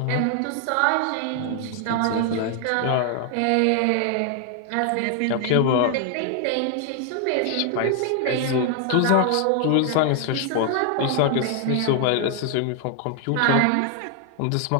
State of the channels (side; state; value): both; different; correlation 0.00